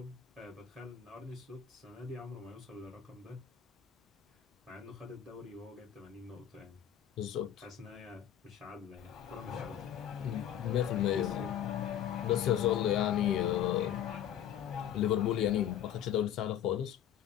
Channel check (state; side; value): quieter; right; 10.3 dB